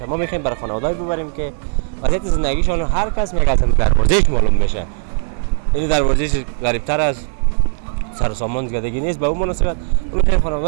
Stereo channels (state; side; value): silent; left; 68 dB below the other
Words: ما میخوایم برای خانواده‌ای ببریم که وضعیت زندگیشون هر کس میگه از دروازه‌اش معلوم میشه. این دروازه‌اش غریب‌تر از سر و سامان زیادگی نیست. به اون مناسبت میخوایم